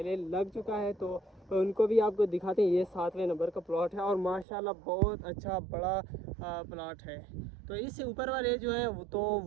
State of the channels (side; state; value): left; drops out; at 4.5 s